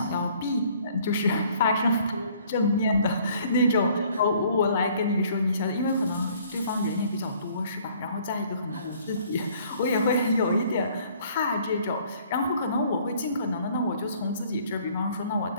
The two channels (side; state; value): both; inverted; correlation -0.58